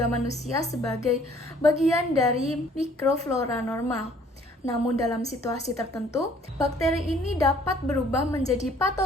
manusia sebagai bagian dari mikroflora normal. Namun dalam situasi tertentu, bakteri ini dapat berubah menjadi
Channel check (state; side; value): normal; both; correlation 0.58